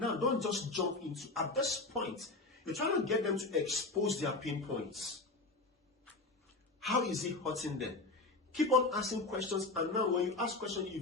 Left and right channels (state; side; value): quieter; right; 3.3 dB